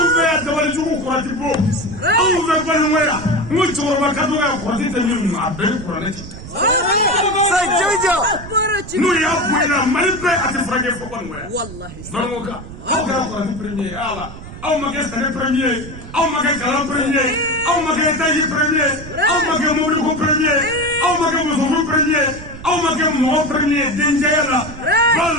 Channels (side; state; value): right; noise; rumble, 13 dB below the sound